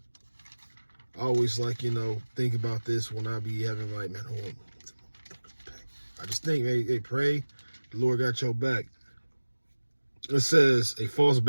I always think about this when I be having man, hold on. I just think, hey, pray, the Lord got your back. It says, a false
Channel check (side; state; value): both; inverted; correlation -1.00